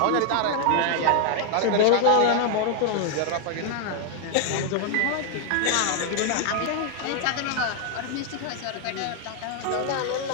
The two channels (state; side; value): different; both; correlation 0.00